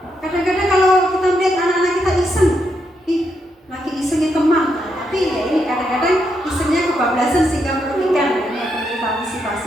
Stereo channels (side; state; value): both; normal; correlation 0.80